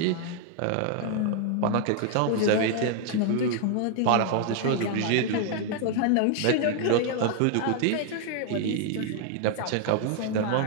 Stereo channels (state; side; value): different; both; correlation 0.00